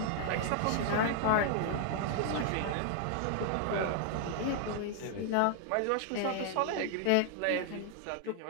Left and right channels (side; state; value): both; different; correlation 0.00